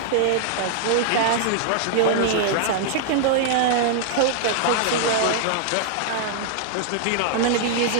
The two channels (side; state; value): both; different; correlation -0.01